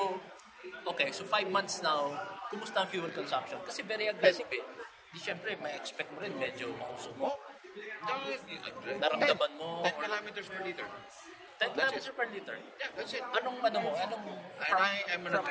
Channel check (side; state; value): both; identical; correlation 1.00